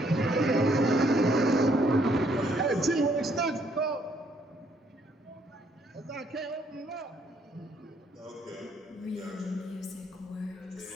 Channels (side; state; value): both; normal; correlation 0.69